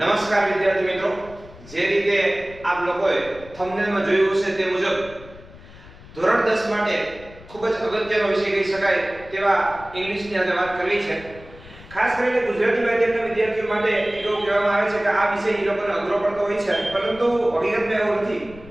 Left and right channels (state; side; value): noise; left; rumble, 19 dB below the sound